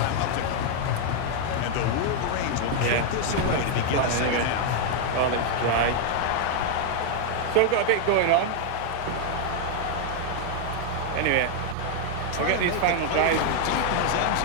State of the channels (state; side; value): different; both; correlation 0.00